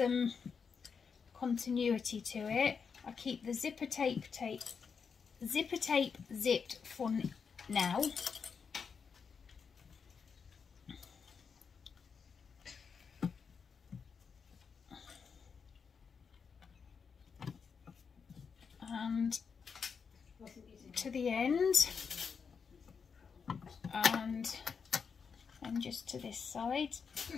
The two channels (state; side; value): quieter; right; 6.0 dB